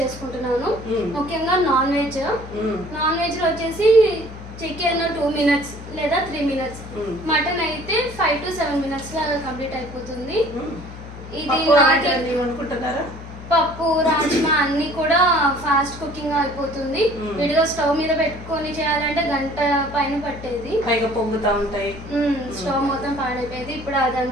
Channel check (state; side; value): noise; left; hum, 13 dB below the sound